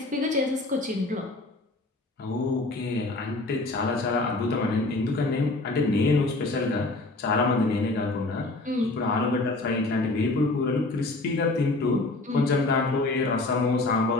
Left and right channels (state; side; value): quieter; right; 3.1 dB